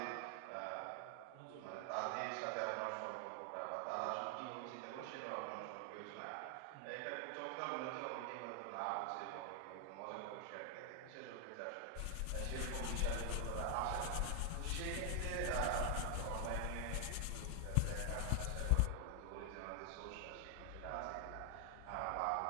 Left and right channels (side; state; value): both; different; correlation 0.00